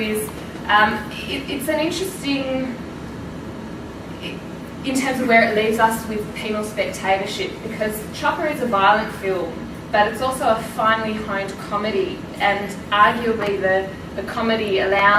it's an interesting, in terms of where it leaves us with penal spectatorship, because Chopper is a violent film, but it's also a finely honed comedy, and arguably the comedy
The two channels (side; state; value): both; identical; correlation 1.00